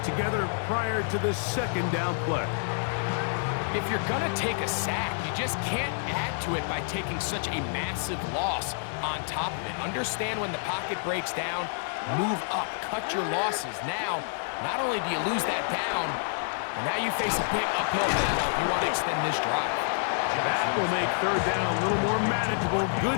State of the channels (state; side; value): silent; right; 59 dB below the other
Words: together prior to this second down play. If you're going to take a sack, you just can't add to it by taking such a massive loss on top of it. Understand when the pocket breaks down, move up, cut your losses. Now, not only do you lose that down, but now you face a big uphill battle if you want to extend this drive. That will make 3rd down a little more manageable. Good